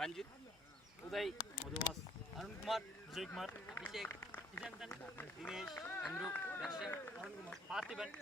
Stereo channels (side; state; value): both; normal; correlation 0.61